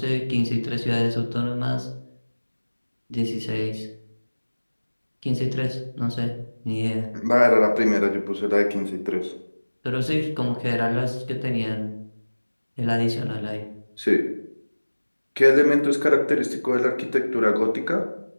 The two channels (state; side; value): inverted; both; correlation -1.00